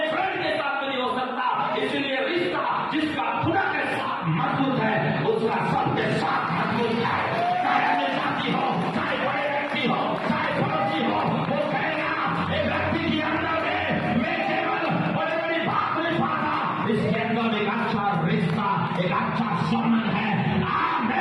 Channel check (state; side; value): identical; both; correlation 1.00